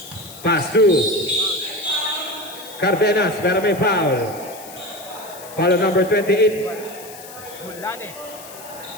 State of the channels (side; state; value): left; noise; hiss, 16 dB below the sound